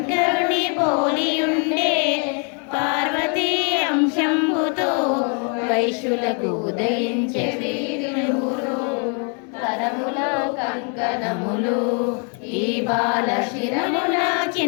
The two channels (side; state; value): right; quieter; 38.8 dB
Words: పోలియుండే. పార్వతీ అంశంబుతో వైశ్యులకు ఉదయించే వీరులు. కరముల కంకణములు ఈ బాల శిరముల